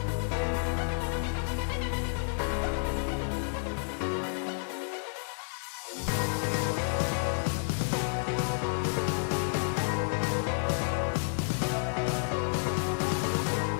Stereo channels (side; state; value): right; silent; 57 dB below the other